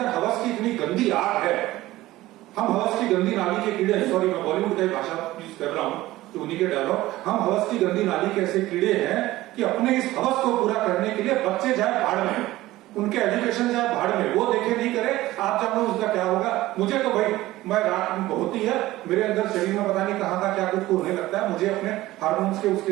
हवस की इतनी गंदी आग है, हम हवस की गंदी नाली के कीड़े, सॉरी मैं बॉलीवुड की भाषा यूज कर रहा हूं तो उन्हीं के डायलॉग, हम हवस की गंदी नाली के ऐसे कीड़े हैं कि अपने इस हवस को पूरा करने के लिए बच्चे जाए भाड़ में, उनके एजुकेशन जाए भाड़ में, वो देखे नहीं करे, आप जानते हो उसका क्या होगा। मुझे तो भाई, मैं रात होती है मेरे अंदर शरीर में पता नहीं कहां का क्या कुछ होने लगता है, मुझे अपने हार्मोन्स के उसके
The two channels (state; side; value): quieter; left; 16.9 dB